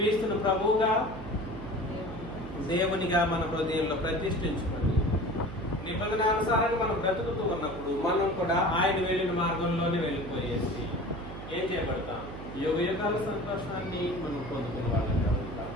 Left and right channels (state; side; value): noise; right; hum, 11 dB below the sound